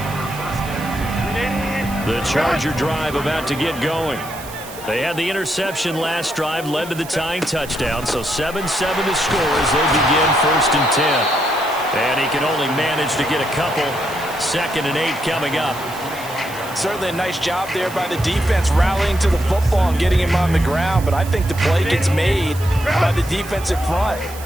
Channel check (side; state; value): right; noise; hiss, 16 dB below the sound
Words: The Charger drive about to get going. They had the interception last drive, led to the tying touchdown, so 7-7 to score as they begin 1st and 10. And he can only manage to get a couple. 2nd and 8 coming up. Certainly a nice job there by the defense rallying to the football and getting him on the ground, but I think the play gets made by the defensive front